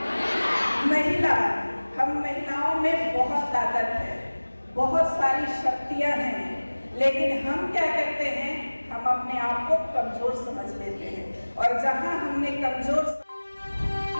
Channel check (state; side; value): inverted; both; correlation -1.00